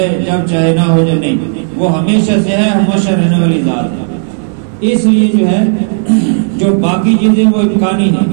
جب چاہے نہ ہو جائے، نہیں، وہ ہمیشہ سے ہے، ہمیشہ رہنے والی ذات ہے۔ اس لیے جو ہے جو باقی چیزیں وہ امکانی ہیں،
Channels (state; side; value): silent; left; digital silence